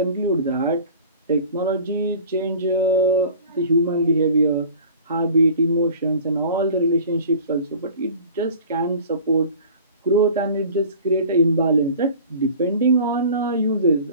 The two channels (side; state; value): both; inverted; correlation -0.43